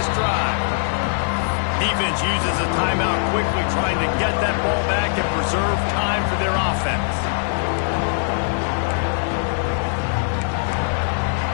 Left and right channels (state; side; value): silent; right; digital silence